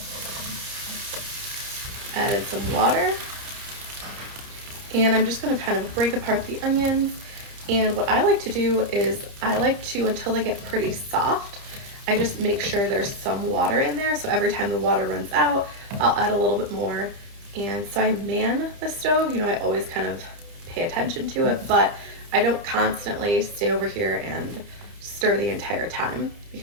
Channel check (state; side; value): late; left; 29 ms